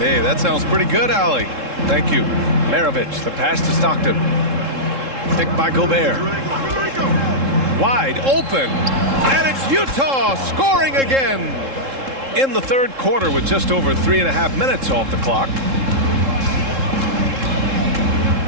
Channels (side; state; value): left; late; 3.7 ms